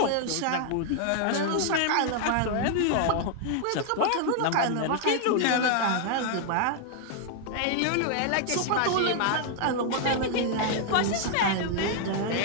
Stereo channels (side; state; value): both; different; correlation 0.00